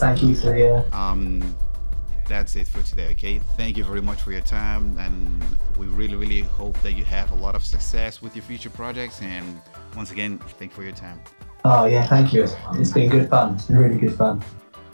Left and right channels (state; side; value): inverted; both; correlation -1.00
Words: you for the... That's it for today, okay? Thank you very much for your time, and we really, really hope that you have a lot of success with your future projects. And once again, thank you for your time. Oh, yeah, thank you. It's been good fun. It's been really good fun.